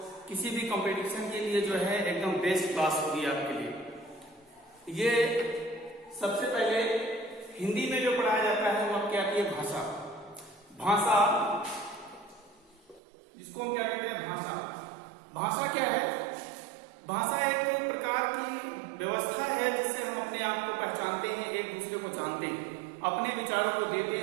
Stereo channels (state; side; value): drops out; left; at 13.0 s